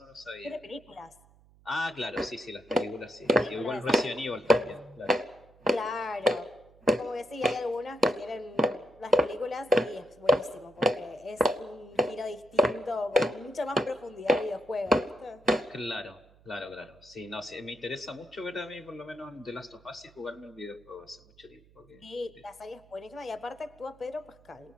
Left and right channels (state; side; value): noise; right; hum, 27 dB below the sound